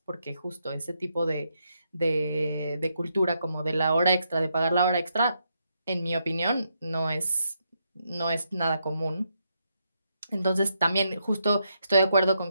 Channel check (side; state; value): both; inverted; correlation -0.79